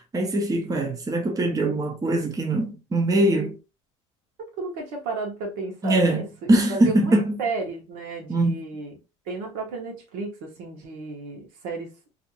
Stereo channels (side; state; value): both; normal; correlation 0.66